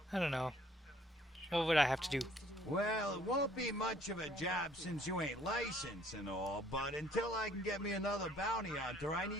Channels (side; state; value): both; normal; correlation 0.60